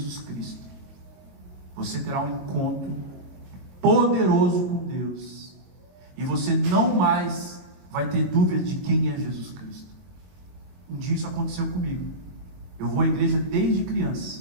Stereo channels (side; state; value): left; late; 22 ms